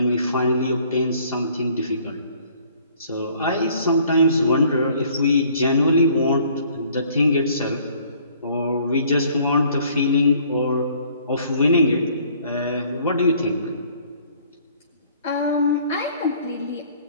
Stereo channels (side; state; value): both; inverted; correlation -0.58